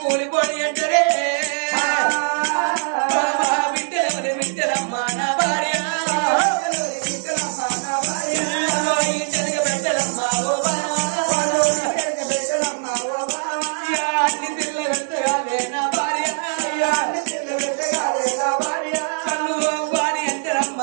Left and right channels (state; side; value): silent; left; 60 dB below the other